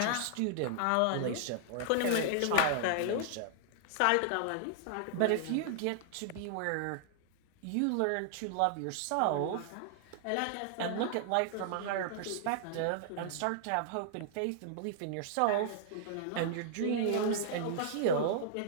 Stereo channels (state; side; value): different; both; correlation -0.01